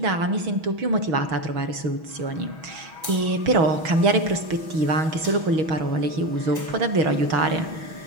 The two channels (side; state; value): left; late; 6.2 ms